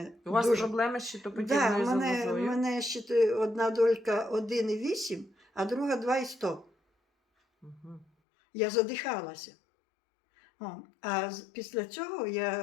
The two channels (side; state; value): right; drops out; at 8.1 s